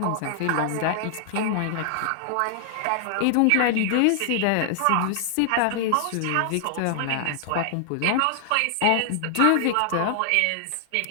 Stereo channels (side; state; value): both; different; correlation -0.01